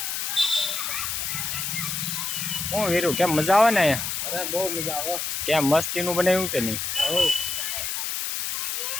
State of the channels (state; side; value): noise; left; hiss, 2 dB below the sound